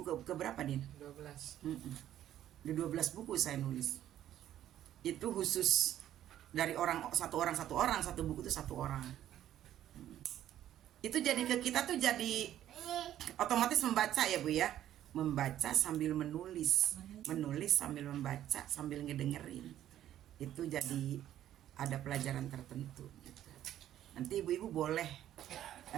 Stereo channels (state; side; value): quieter; left; 11.9 dB